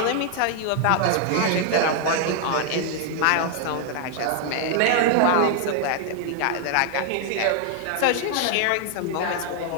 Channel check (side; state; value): both; different; correlation 0.00